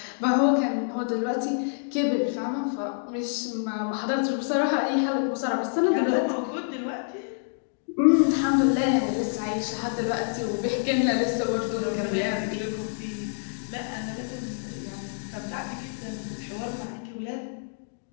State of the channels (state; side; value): silent; right; digital silence